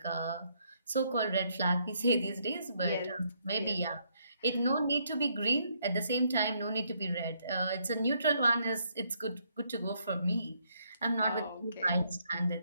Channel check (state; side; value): inverted; both; correlation -0.72